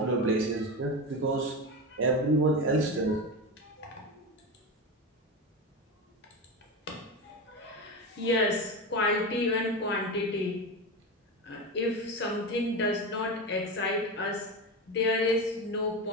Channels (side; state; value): both; normal; correlation 0.21